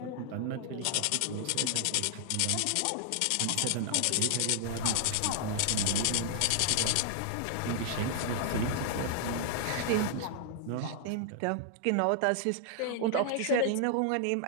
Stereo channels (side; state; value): both; different; correlation 0.00